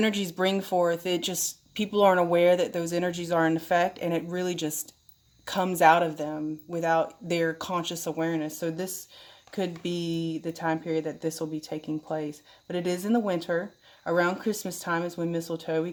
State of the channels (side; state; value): both; identical; correlation 1.00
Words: bring forth, it just, people aren't aware that those energies are in effect, and it really just comes out of them without their conscious awareness. So this could be the time period that this will be taking place. But it is in the winter. Around Christmas time is when mistletoe, we